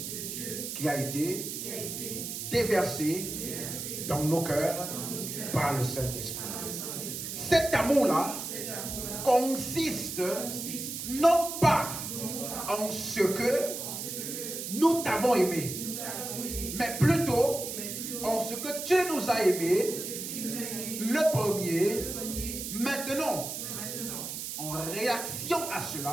qui a été déversé dans nos cœurs par le Saint-Esprit. Cet amour-là consiste non pas en ce que nous t'avons aimé, mais plutôt en ce que tu nous as aimé le premier. Maintenant, en réaction à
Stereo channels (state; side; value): noise; right; hiss, 6 dB below the sound